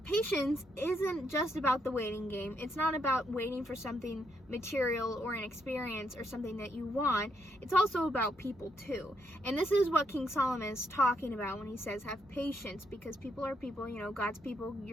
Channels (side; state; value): both; normal; correlation 0.77